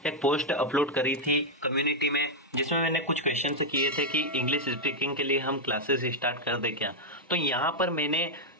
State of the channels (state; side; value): normal; both; correlation -0.03